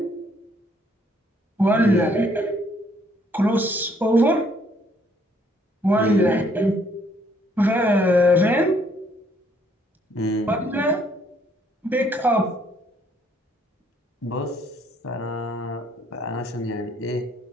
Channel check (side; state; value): both; normal; correlation 0.66